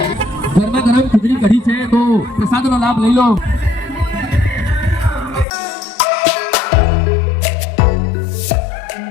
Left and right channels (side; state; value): right; drops out; at 5.5 s